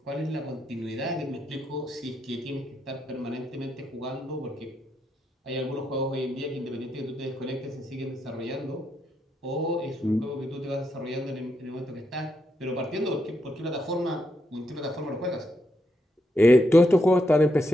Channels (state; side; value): normal; both; correlation 0.81